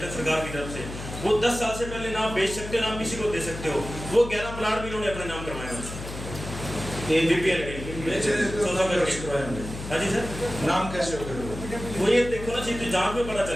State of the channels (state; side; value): noise; left; hum, 9 dB below the sound